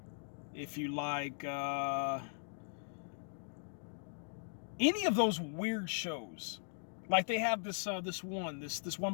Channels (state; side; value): silent; right; digital silence